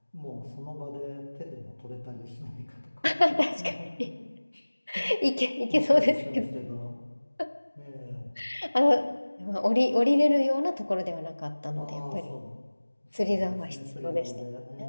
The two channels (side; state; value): both; inverted; correlation -1.00